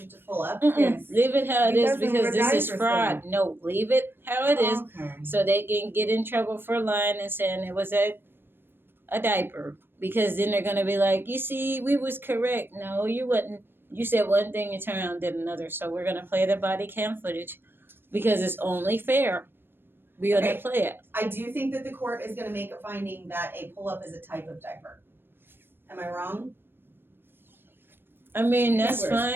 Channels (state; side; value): late; left; 0.10 ms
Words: it to pull up. Yes. Leave it how it He is doesn't because wear this is diapers, fraud. No, leave it how it is Okay. so they can get in trouble for lying and saying it was a diaper. Because then they're gonna be like, you see, we was correct. No, you wasn't. You said one thing, you turned around and did another. So we're gonna play the body cam footage because it's only fair. We're gonna Okay. play it. I do think that the court is gonna make a finding that a pull-up is a type of diaper. Am I wrong? I mean, that's He wears